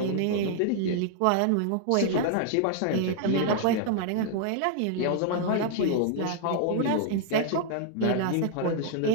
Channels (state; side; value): different; both; correlation 0.00